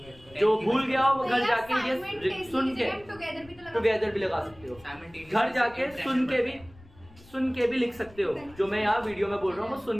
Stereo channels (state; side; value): noise; left; rumble, 24 dB below the sound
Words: जो भूल गया हो वो घर जाके ये सुन के टुगेदर भी लगा सकते हो, घर जाके सुन के भी लिख सकते हो, जो मैं यहाँ वीडियो में बोल रहा हूँ वो